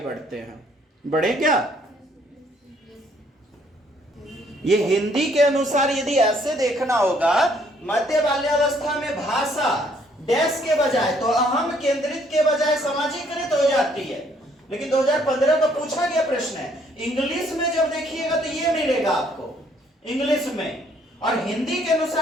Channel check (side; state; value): both; normal; correlation 0.65